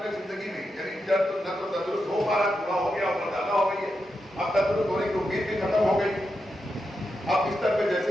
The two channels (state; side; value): normal; both; correlation 0.86